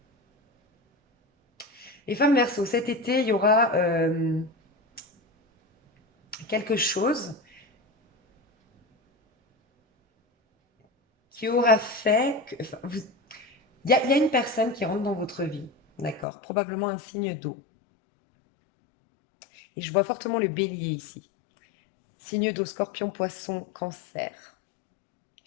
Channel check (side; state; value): right; drops out; at 16.2 s